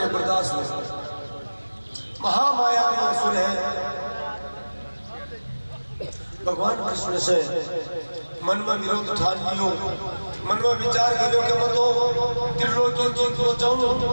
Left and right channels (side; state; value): both; inverted; correlation -1.00